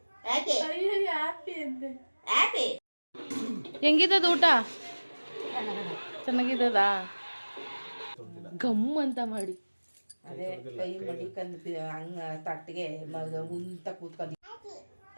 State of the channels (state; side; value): inverted; both; correlation -1.00